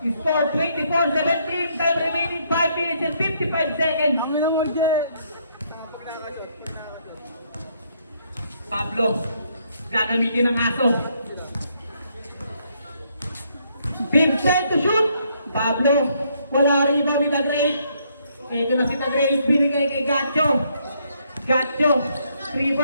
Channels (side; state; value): both; inverted; correlation -0.71